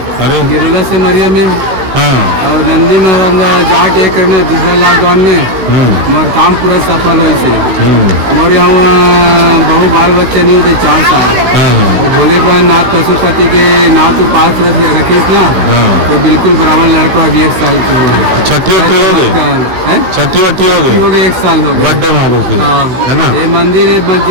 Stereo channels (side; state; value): left; late; 16 ms